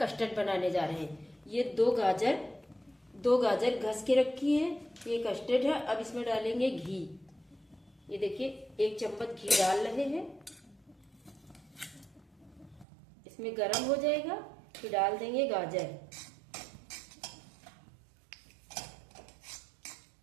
बनाने जा रहे हैं। ये दो गाजर घस के रखी है। ये कस्टर्ड है। अब इसमें डालेंगे घी। ये देखिए 1 चम्मच घी डाल रहे हैं। इसमें गरम हो जाएगा फिर डाल देंगे गाजर।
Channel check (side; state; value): left; drops out; at 12.9 s